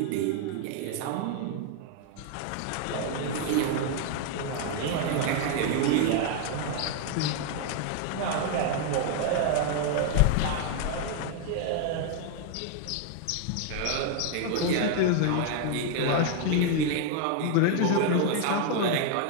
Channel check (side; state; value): both; different; correlation 0.00